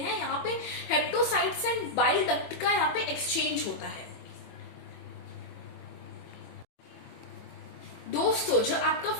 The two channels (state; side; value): late; right; 24 ms